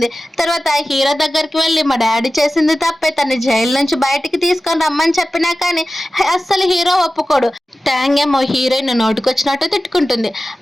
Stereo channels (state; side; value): normal; both; correlation 0.95